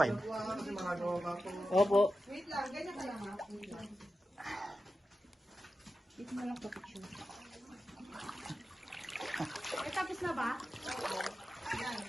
Opo. Tapos na ba?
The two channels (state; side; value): normal; both; correlation 0.92